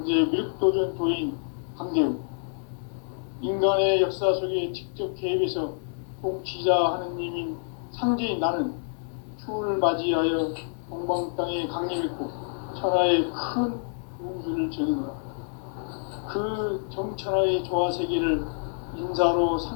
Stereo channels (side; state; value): right; silent; digital silence